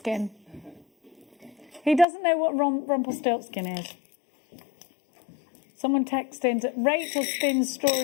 He doesn't know what Rumpelstiltskin is. Someone texted in, Rachel spins straw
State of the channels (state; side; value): drops out; right; at 2.1 s